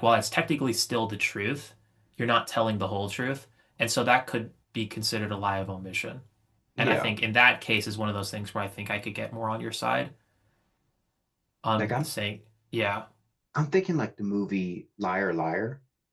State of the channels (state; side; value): identical; both; correlation 1.00